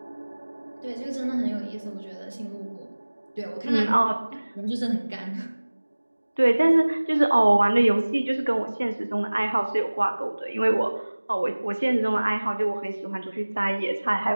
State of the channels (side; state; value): both; inverted; correlation -1.00